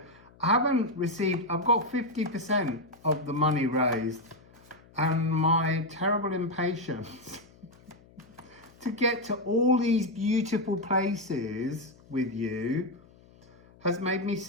I haven't received, I've got 50% of the money raised, and my terrible impatience to get to all these beautiful places with you has made me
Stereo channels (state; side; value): noise; left; hum, 26 dB below the sound